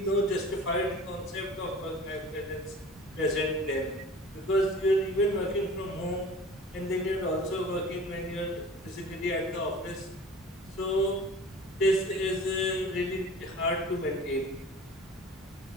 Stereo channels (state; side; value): normal; both; correlation 0.42